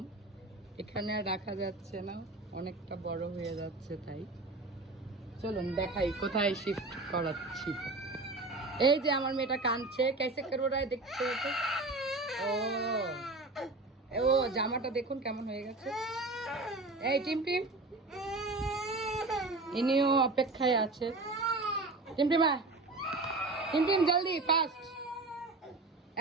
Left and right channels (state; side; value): quieter; left; 3.2 dB